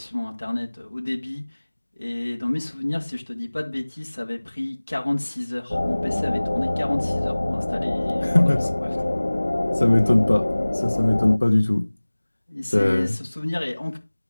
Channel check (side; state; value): both; inverted; correlation -1.00